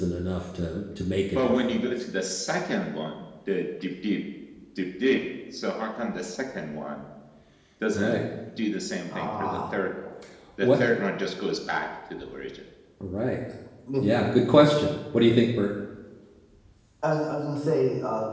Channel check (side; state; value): both; identical; correlation 1.00